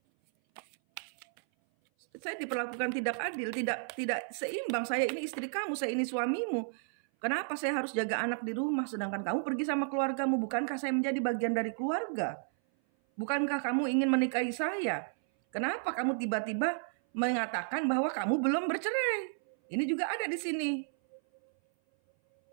Saya diperlakukan tidak adil, tidak seimbang. Saya ini istri kamu, saya ini suamimu. Kenapa saya harus jaga anak di rumah sedangkan kamu pergi sama keluargamu? Bukankah saya menjadi bagian dari keluarga? Bukankah kamu ingin menikahi saya? Kenapa kamu tiba-tiba mengatakan bahwa kamu belum bercerai? Ini juga ada di sini.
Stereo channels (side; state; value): left; silent; 56 dB below the other